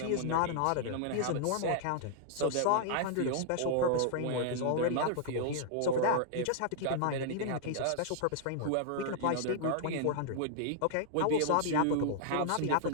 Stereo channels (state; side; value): different; both; correlation -0.01